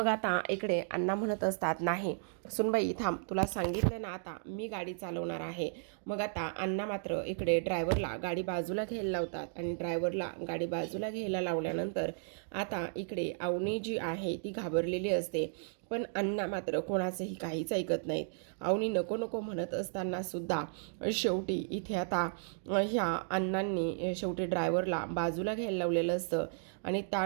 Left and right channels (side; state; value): left; silent; digital silence